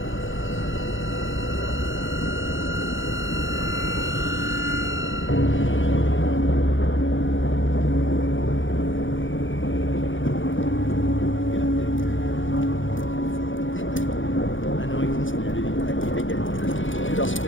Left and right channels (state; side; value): late; right; 0.57 ms